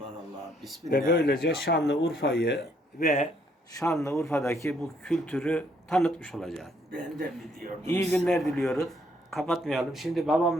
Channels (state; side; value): normal; both; correlation 0.69